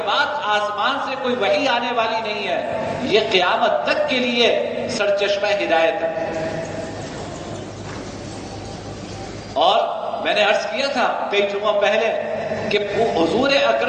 بعد آسمان سے کوئی وحی آنے والی نہیں ہے۔ یہ قیامت تک کے لیے سرچشمہ ہدایت ہے۔ اور میں نے عرض کیا تھا کئی جمعہ پہلے کہ حضور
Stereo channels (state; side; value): identical; both; correlation 1.00